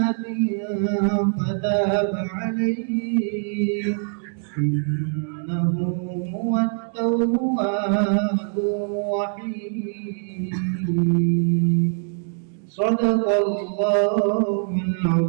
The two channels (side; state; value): left; silent; 57 dB below the other